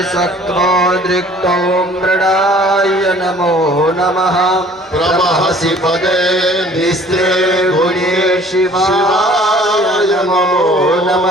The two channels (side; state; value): both; normal; correlation 0.52